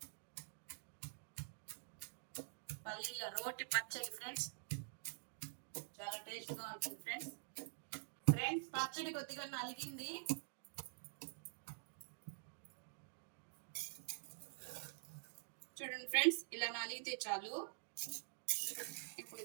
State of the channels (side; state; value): left; silent; digital silence